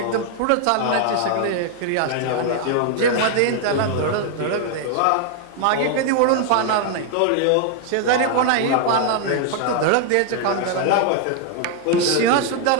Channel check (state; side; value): different; both; correlation 0.00